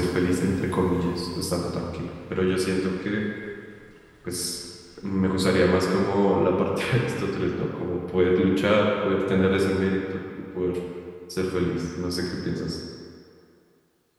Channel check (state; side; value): identical; both; correlation 1.00